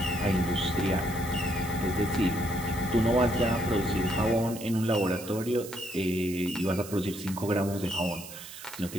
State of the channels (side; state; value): right; noise; hiss, 14 dB below the sound